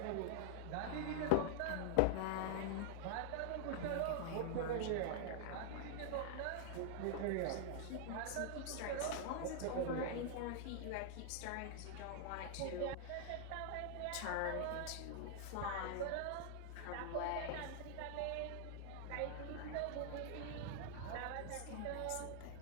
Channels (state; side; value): different; both; correlation 0.00